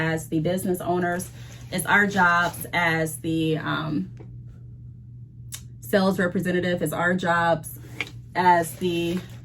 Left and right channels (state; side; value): identical; both; correlation 1.00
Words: the business owners, it's our jobs as the sales representative, it's our jobs as the,